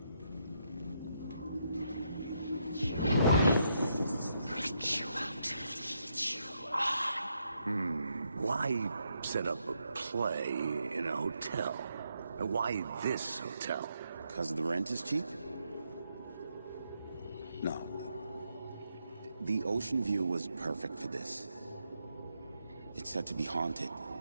Why set up a play in a hotel? Why this hotel? Because the rent is cheap? No. The ocean view was perfect for this. It's said to be haunted.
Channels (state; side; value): inverted; both; correlation -0.79